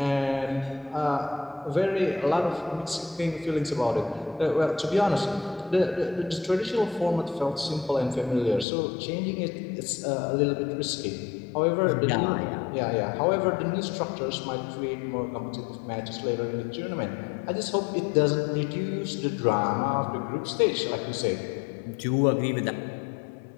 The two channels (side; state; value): right; drops out; at 8.7 s